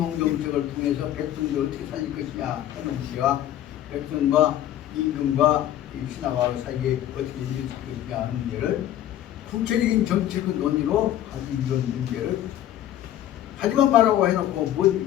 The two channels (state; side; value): quieter; right; 12.2 dB